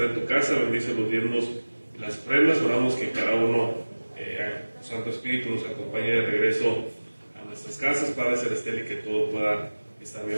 en tu casa. Bendice los diezmos y las ofrendas. Oramos que cada uno, Santo Espíritu, nos acompañe de regreso a nuestras casas, Padre Celestial, y que todo pueda está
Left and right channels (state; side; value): inverted; both; correlation -1.00